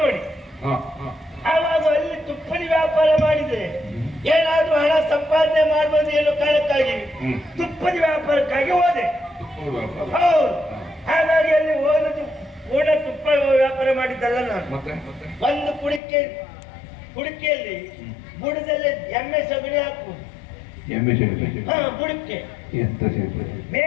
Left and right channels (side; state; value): right; drops out; at 16.0 s